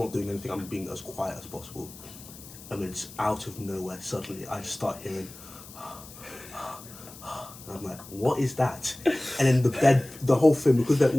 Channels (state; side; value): noise; left; hiss, 17 dB below the sound